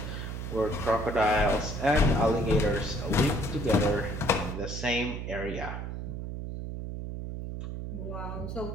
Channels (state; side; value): noise; right; hum, 6 dB below the sound